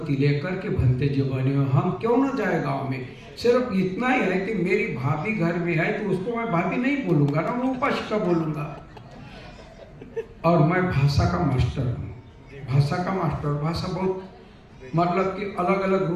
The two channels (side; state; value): both; identical; correlation 1.00